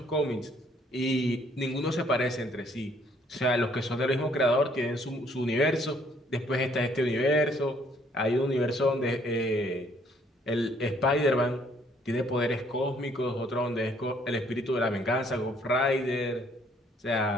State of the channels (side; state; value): both; normal; correlation 0.64